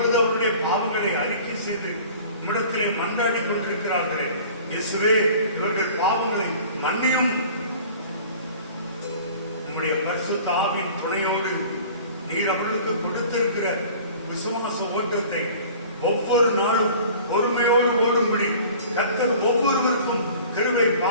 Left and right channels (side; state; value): both; inverted; correlation -0.45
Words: அவருடைய பாவங்களை அறிக்கை செய்து உம்மிடத்திலே மன்றாடி கொண்டிருக்கிறார்களே, இயேசுவே இவர்கள் பாவங்களை மன்னியும். உம்முடைய பரிசுத்த ஆவியின் துணையோடு நீர் அவர்களுக்கு கொடுத்திருக்கிற விசுவாச ஓட்டத்தை ஒவ்வொரு நாளும் பொறுமையோடு ஓடும்படி கர்த்தர் ஒவ்வொருவருக்கும் கிருபை